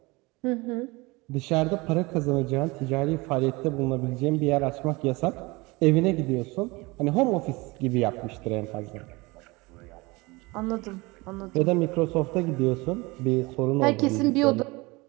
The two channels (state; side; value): quieter; left; 24.0 dB